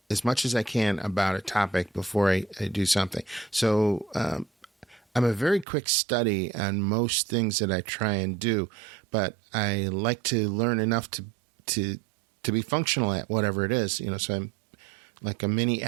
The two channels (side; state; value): left; drops out; at 5.7 s